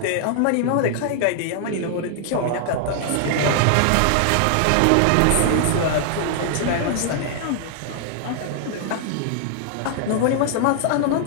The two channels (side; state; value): both; different; correlation 0.00